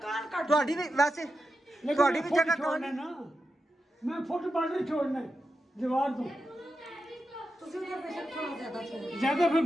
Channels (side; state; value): both; normal; correlation 0.89